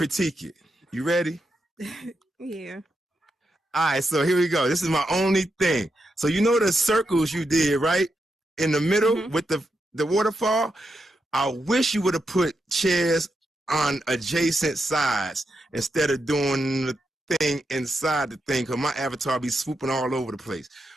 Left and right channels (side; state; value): both; normal; correlation 0.85